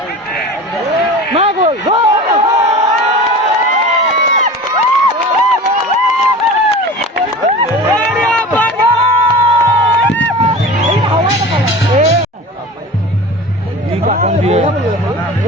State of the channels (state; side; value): normal; both; correlation 0.35